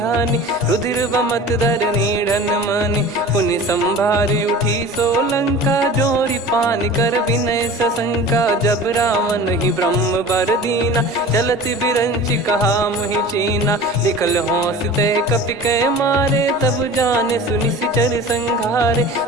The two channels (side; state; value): both; normal; correlation 0.38